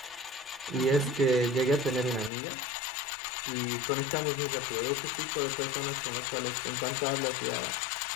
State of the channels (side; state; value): right; drops out; at 2.3 s